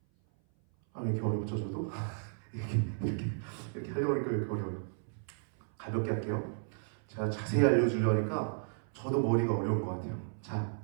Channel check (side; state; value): left; silent; 55 dB below the other